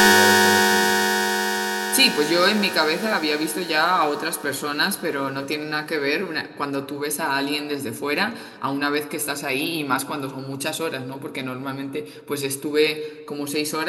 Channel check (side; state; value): both; identical; correlation 1.00